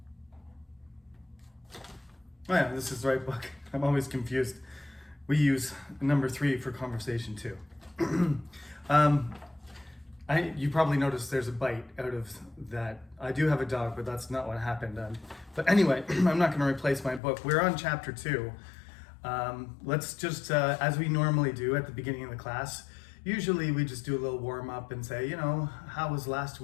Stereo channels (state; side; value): drops out; right; at 17.2 s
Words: yeah, this is the right book. I'm always confused. We use number 3 for Conversation 2. You probably noticed there's a bite out of that. I do have a dog, but that's not what happened. But anyway, I'm not going to replace my book. We're on Chapter 2. Let's just, as we normally do at the beginning of the class, usually we just do a little warm up and say, how was last